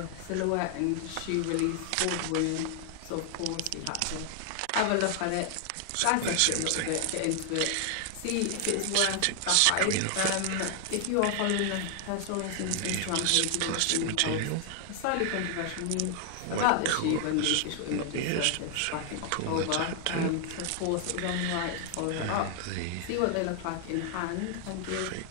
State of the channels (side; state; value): both; different; correlation 0.00